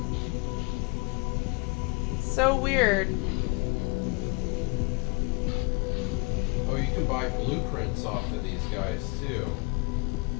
So weird. Oh, you can buy blueprints off of these guys too.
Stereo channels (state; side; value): quieter; right; 29.8 dB